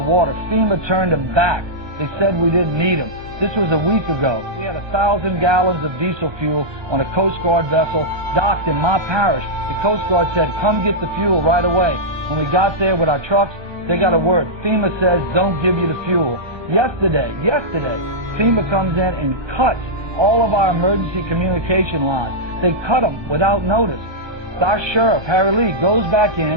water. FEMA turned them back. They said we didn't need them. This was a week ago. We had 1,000 gallons of diesel fuel on a Coast Guard vessel docked in my parish. The Coast Guard said, come get the fuel right away. When we got there with our trucks, they got a word. FEMA says, don't give you the fuel. Yesterday, FEMA comes in and cuts all of our emergency communication lines. They cut them without notice. Our sheriff, Harry Lee, goes back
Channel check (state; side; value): late; left; 1.2 ms